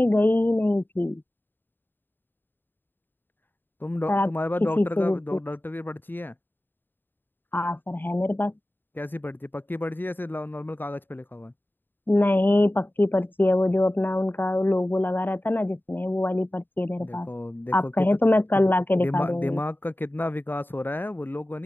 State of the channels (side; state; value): right; late; 0.094 ms